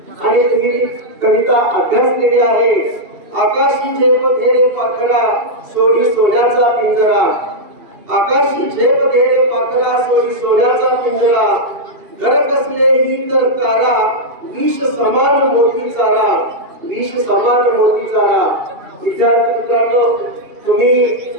आणि तुम्ही ती कविता अभ्यासलेली आहे. आकाशी झेप घे रे पाखरा, सोडी सोन्याचा पिंजरा. आकाशी झेप घे रे पाखरा, सोडी सोन्याचा पिंजरा. घर कसलेही तर कारा, विष समान मोती चारा, विष समान मोती चारा. विद्यार्थी मित्रांनो, तुम्ही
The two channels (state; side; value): late; left; 2.7 ms